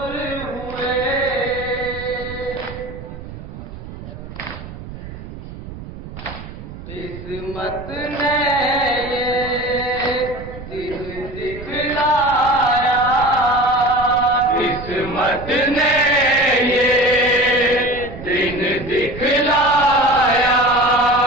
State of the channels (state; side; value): noise; right; rumble, 12 dB below the sound